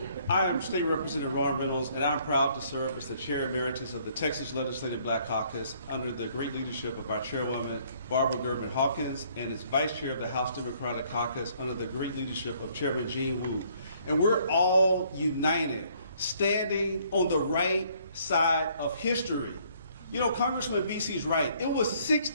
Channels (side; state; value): both; inverted; correlation -0.63